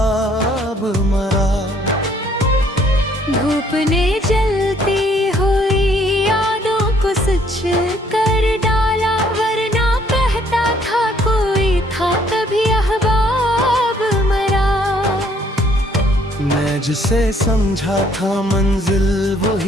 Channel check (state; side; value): normal; both; correlation 0.64